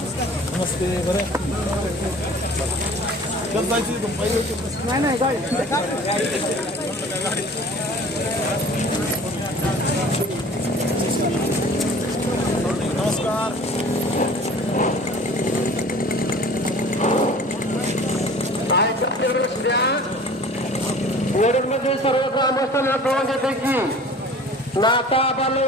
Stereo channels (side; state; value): both; normal; correlation 0.45